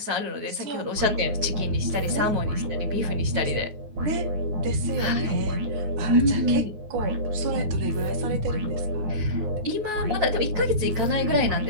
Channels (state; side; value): late; left; 9.4 ms